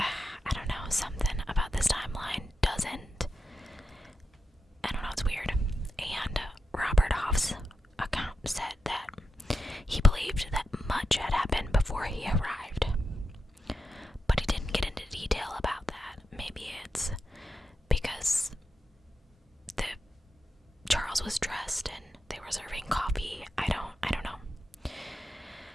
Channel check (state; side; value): normal; both; correlation 0.88